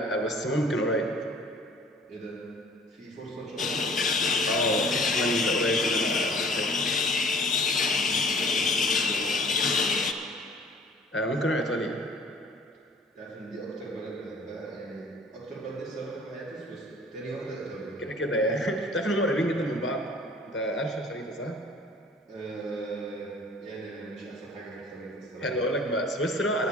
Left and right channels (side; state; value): both; normal; correlation 0.51